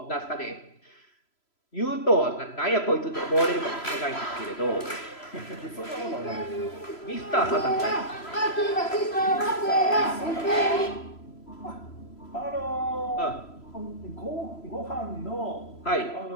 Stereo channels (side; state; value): right; late; 3.0 ms